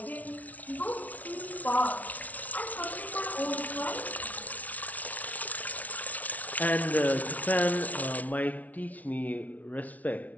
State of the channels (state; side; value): late; right; 0.072 ms